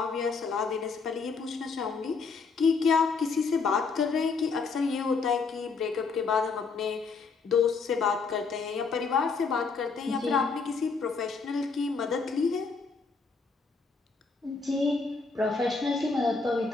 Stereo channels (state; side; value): quieter; right; 4.7 dB